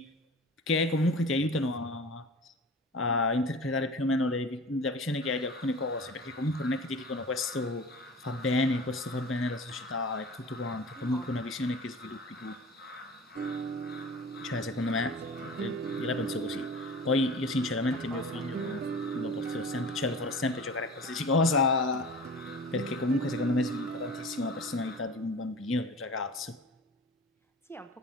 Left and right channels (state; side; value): normal; both; correlation 0.38